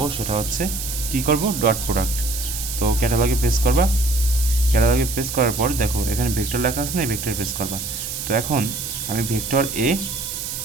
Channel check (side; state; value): right; noise; hiss, 6 dB below the sound